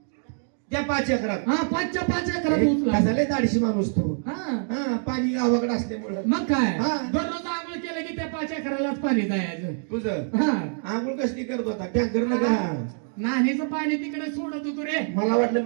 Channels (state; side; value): silent; left; 61 dB below the other